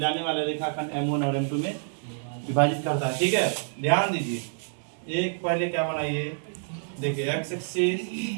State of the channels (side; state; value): left; silent; digital silence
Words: वाले रेखाखंड M1 और M2 में विभाजित करता है। ठीक है, ध्यान दीजिए। एक पहले क्या बनाइए, देखिए X axis,